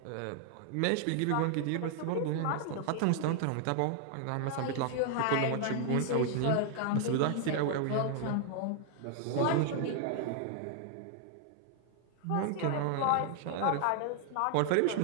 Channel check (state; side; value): different; both; correlation 0.00